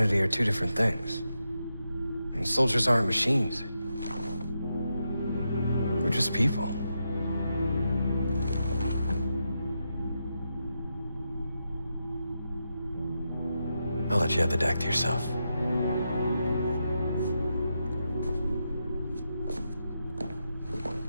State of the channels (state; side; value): inverted; both; correlation -0.86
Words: are two different things. I mean, soldiers aren't machines. We're just people. I'll let you have the deck to yourself.